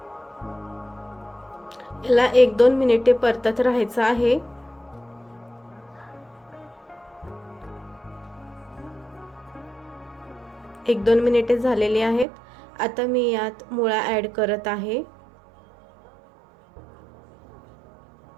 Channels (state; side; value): drops out; left; at 12.2 s